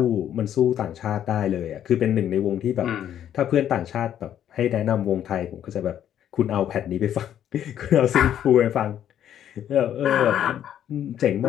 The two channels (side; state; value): right; quieter; 10.4 dB